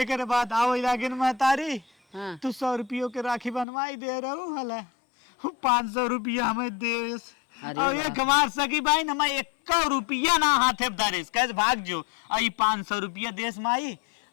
बाद आओ इलाके में महतारी हाँ। तू 100 रुपयों के राखी बनवाई दे रहू हला 500 रुपया हमें दे। अरे और एक हमार सगी भाई न मैं 1 रुपया ना हाथे धरेस कैसे भाग जो आई 500 रुपया देश माई।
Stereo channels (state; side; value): drops out; right; at 3.7 s